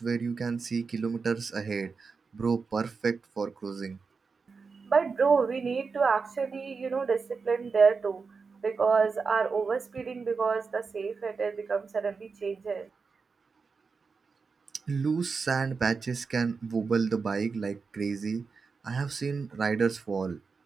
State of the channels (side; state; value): left; quieter; 4.9 dB